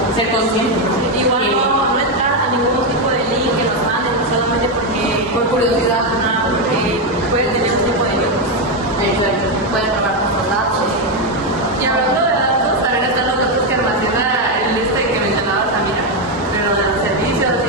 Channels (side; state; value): both; normal; correlation 0.06